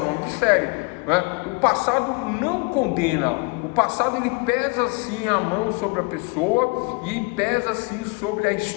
nome de série, né? O passado não condena. O passado, ele pesa sim a mão sobre a pessoa, e pesa sim sobre a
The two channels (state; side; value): quieter; right; 28.6 dB